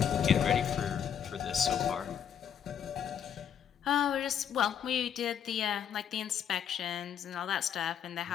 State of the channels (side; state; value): right; quieter; 8.6 dB